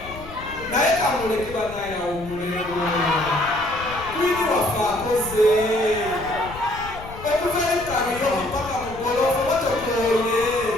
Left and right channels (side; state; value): left; noise; rumble, 15 dB below the sound